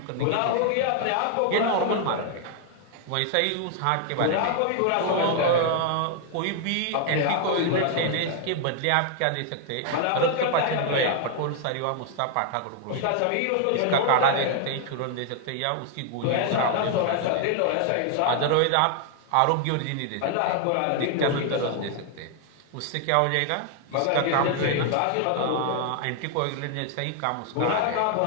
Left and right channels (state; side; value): different; both; correlation 0.00